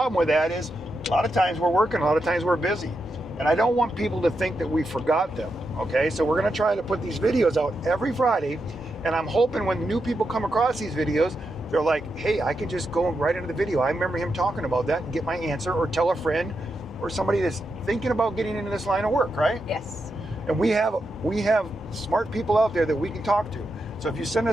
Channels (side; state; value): both; normal; correlation 0.86